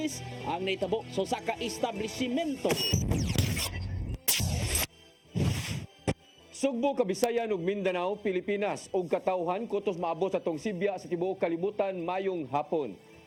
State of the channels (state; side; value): identical; both; correlation 1.00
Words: ang naitabo sa saka establishmento. Sugbo, Kabisayan ug Mindanao, Pilipinas ug katawhan kutos maabot sa tong Sibya sa tibuok kalibutan mayong hapon.